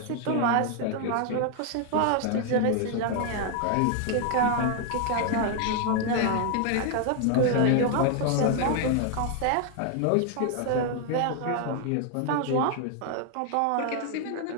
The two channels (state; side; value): different; both; correlation 0.01